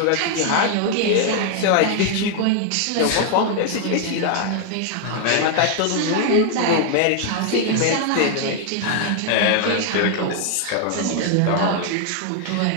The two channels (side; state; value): both; different; correlation 0.00